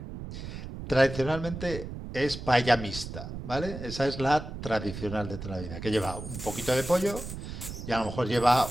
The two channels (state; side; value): noise; right; rumble, 9 dB below the sound